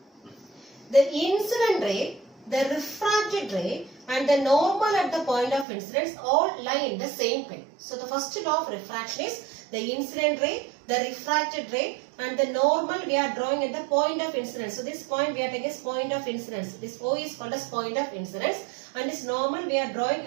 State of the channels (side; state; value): left; drops out; at 5.7 s